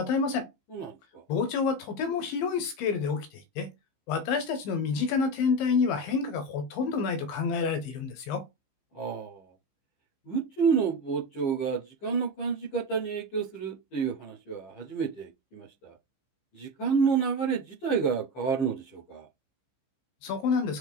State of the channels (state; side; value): late; right; 15 ms